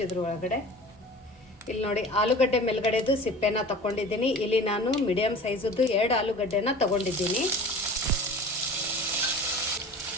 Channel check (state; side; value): normal; both; correlation 0.39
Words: ಇದ್ರೊಳಗಡೆ ಇಲ್ಲಿ ನೋಡಿ ಆಲೂಗಡ್ಡೆ ಮೇಲ್ಗಡೆದು ಸಿಪ್ಪೆನ ತಗೊಂಡಿದ್ದೀನಿ. ಇಲ್ಲಿ ನಾನು ಮೀಡಿಯಮ್ ಸೈಜದ್ದು 2 ಆಲೂಗಡ್ಡೆನ ತಗೊಂಡಿದ್ದೀನಿ.